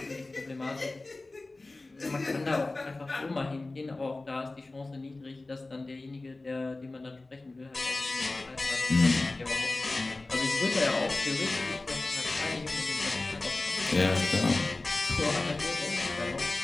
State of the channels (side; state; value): right; quieter; 3.1 dB